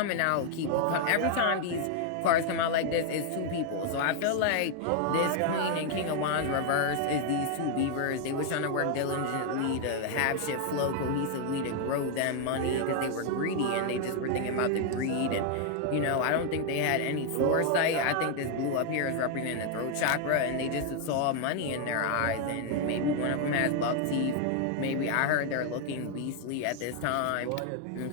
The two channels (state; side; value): different; both; correlation 0.00